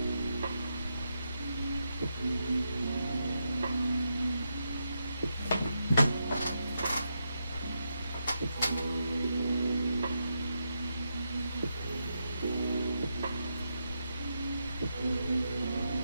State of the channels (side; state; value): both; inverted; correlation -0.84